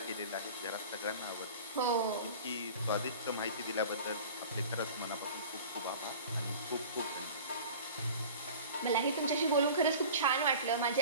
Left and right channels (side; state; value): both; inverted; correlation -0.40